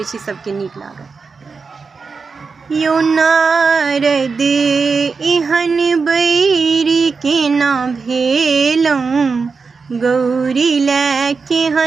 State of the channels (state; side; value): quieter; left; 4.8 dB